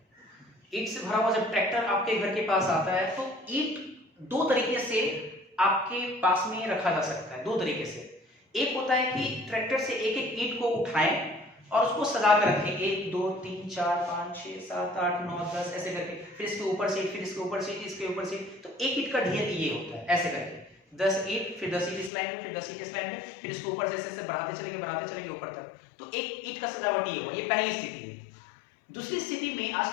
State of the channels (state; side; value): drops out; right; at 22.1 s